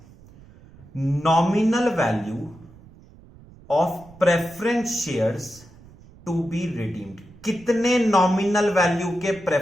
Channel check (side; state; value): right; noise; rumble, 23 dB below the sound